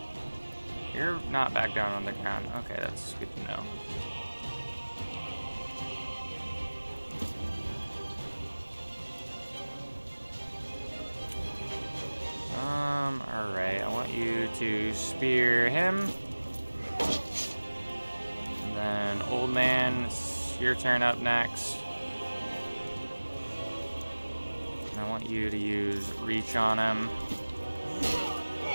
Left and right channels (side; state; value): both; inverted; correlation -1.00